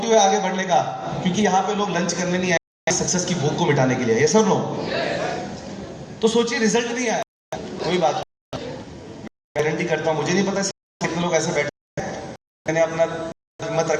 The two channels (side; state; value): both; identical; correlation 1.00